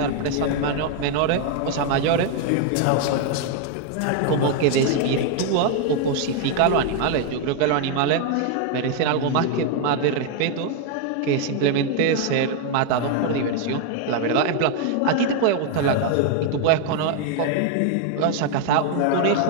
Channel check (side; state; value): both; different; correlation 0.01